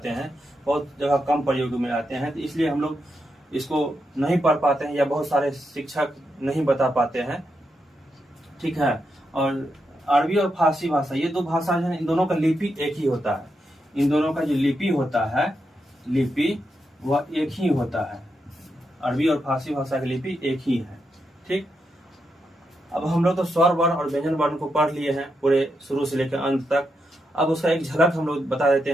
हैं, बहुत जगह कम प्रयोग में लाते हैं, तो इसलिए हम लोग इसको नहीं पढ़ पाते हैं या बहुत सारे शिक्षक नहीं बता पाते हैं, ठीक है। और अरबी और फारसी भाषा, ये 2 भाषा है, इन दोनों का लिपि एक ही होता है। इन दोनों का जो लिपि होता है, लिपि वह एक ही होता है। अरबी और फारसी भाषा की लिपि एक ही है, ठीक। अब हम लोग तो स्वर वर्ण और व्यंजन वर्ण को पढ़ लिए हैं पूरे शुरू से लेकर अंत तक। अब उसका एक झलक हम लोग बता देते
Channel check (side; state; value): both; normal; correlation 0.84